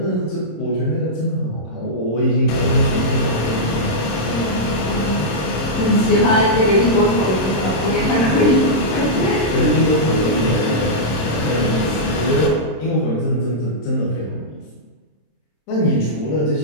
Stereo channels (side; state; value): right; late; 26 ms